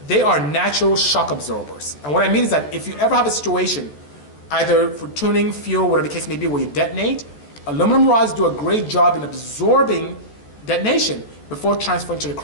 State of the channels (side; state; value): right; late; 14 ms